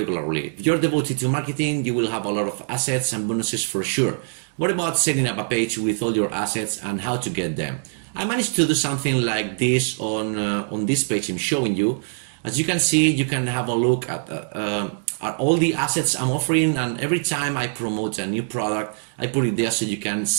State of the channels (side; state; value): left; silent; digital silence